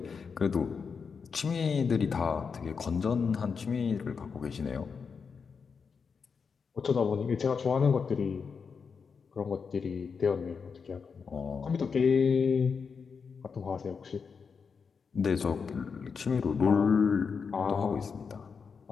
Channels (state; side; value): quieter; right; 5.7 dB